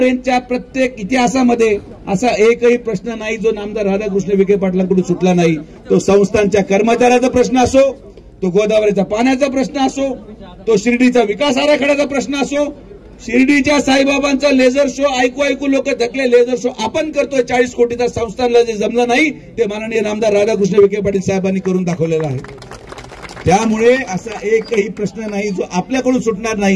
प्रत्येक इतिहासामध्ये असा एकही प्रश्न नाही जो नामदार राधाकृष्ण विखे पाटलांकडून सुटला नाही. तो संस्थांच्या कर्मचाऱ्याचा प्रश्न असो, तो गोदावरीचा पाण्याचा प्रश्न असो, तो शिर्डीचा विकास आराखड्याचा प्रश्न असो, शिर्डीच्या साईबाबांचा लेझर शो ऐकू लोक थकले. लेझर शो आपण करतोय 40 कोटीचा, संस्थांना जे जमलं नाही ते माननीय नामदार राधाकृष्ण विखे पाटील साहेबांनी करून दाखवलेला आहे. त्यामुळे असा एकही प्रश्न नाही जो आपल्याकडून सुटणार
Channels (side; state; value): both; identical; correlation 1.00